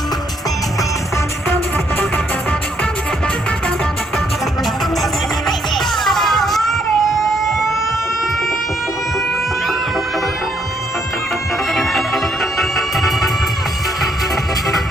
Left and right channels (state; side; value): normal; both; correlation 0.72